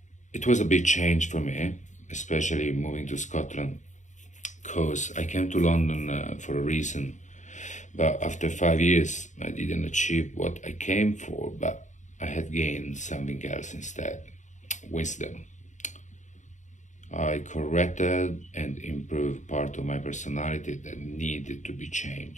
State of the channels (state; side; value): late; right; 0.35 ms